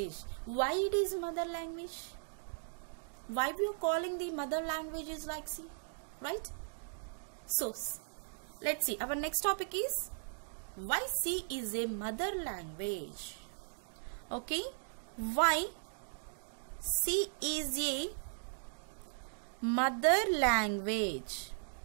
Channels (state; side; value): silent; left; digital silence